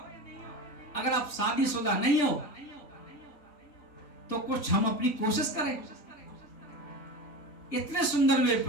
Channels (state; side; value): late; right; 3.8 ms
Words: अगर आप शादीशुदा नहीं हो तो कुछ हम अपनी कोशिश करें। इतने सुंदर मेरे